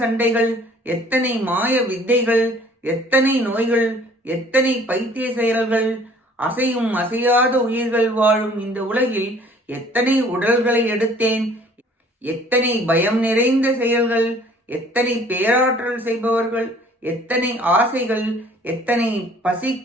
சண்டைகள், எத்தனை மாய வித்தைகள், எத்தனை நோய்கள், எத்தனை பைத்திய செயல்கள், அசையும் அசையாத உயிர்கள் வாழும் இந்த உலகில் எத்தனை உடல்களை எடுத்தேன், எத்தனை பயம் நிறைந்த செயல்கள், எத்தனை பேராற்றல் செய்பவர்கள், எத்தனை ஆசைகள், எத்தனை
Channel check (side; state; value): both; normal; correlation 0.54